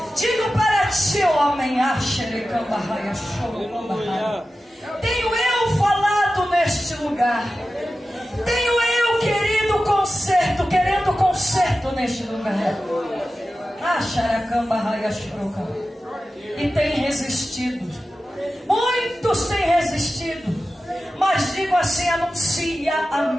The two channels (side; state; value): both; normal; correlation 0.94